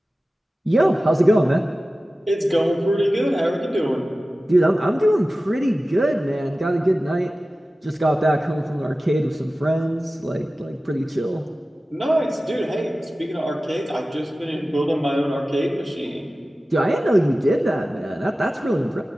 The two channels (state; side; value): normal; both; correlation 0.96